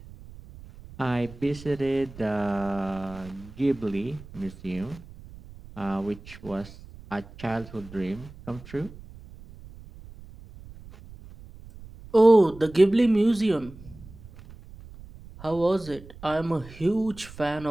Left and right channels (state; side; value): noise; right; rumble, 18 dB below the sound